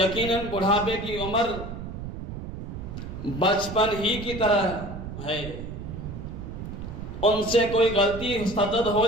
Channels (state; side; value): noise; right; rumble, 8 dB below the sound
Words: بڑھاپے کی عمر بچپن ہی کی طرح ہے، ان سے کوئی غلطی صدد ہو